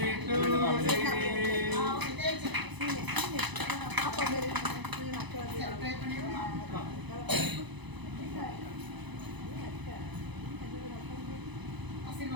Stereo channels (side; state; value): left; late; 1.0 ms